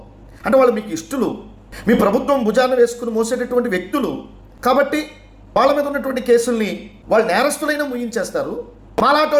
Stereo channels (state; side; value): identical; both; correlation 1.00